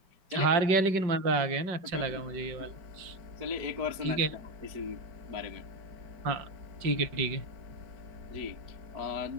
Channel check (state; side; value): late; left; 5.2 ms